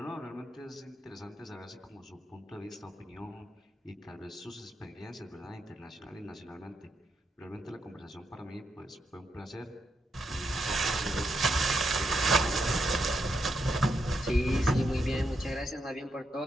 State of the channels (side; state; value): both; normal; correlation 0.82